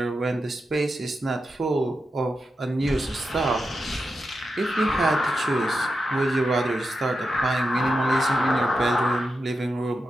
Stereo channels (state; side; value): normal; both; correlation 0.88